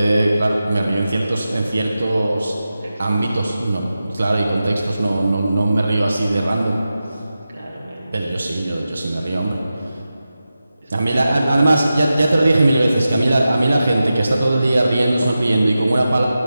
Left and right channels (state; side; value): inverted; both; correlation -0.93